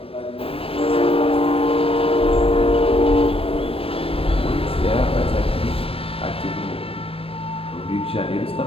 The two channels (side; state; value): right; late; 0.28 ms